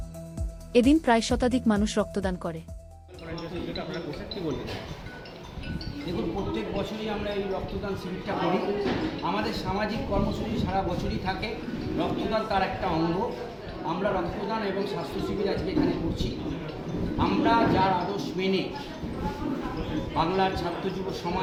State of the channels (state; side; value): identical; both; correlation 1.00